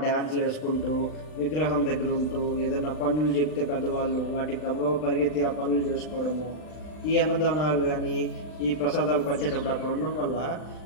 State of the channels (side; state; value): right; late; 39 ms